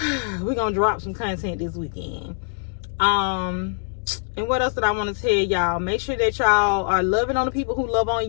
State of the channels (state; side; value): silent; right; digital silence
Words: we're gonna drop some content this weekend. And what else did I want to tell y'all? Make sure that y'all are loving on the people who love